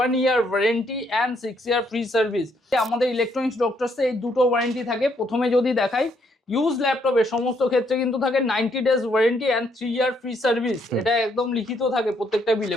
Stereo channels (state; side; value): normal; both; correlation 0.72